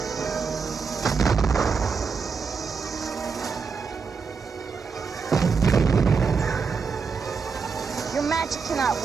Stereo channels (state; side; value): quieter; left; 5.4 dB